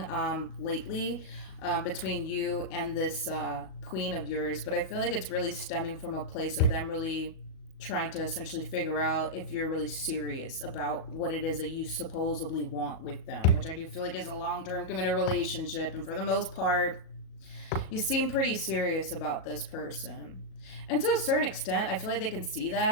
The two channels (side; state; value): right; late; 37 ms